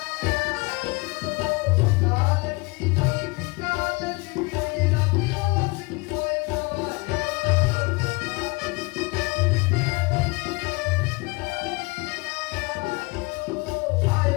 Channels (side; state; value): right; quieter; 26.5 dB